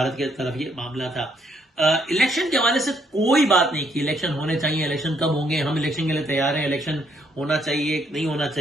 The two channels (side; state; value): both; normal; correlation 0.71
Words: کی طرف یہ معاملہ تھا. الیکشن کے حوالے سے کوئی بات نہیں کی, الیکشن ہونے چاہیے, الیکشن کب ہوں گے, ہم الیکشن کے لیے تیار ہیں, الیکشن ہونا چاہیے نہیں ہونا